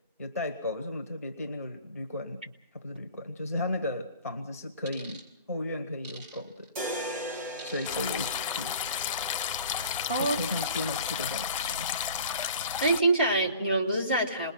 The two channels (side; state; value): both; inverted; correlation -0.45